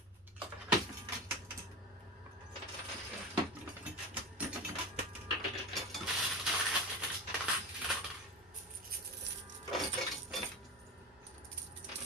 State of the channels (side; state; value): both; normal; correlation 0.25